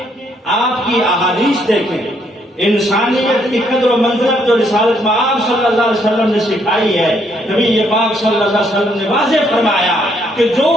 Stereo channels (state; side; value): normal; both; correlation 0.71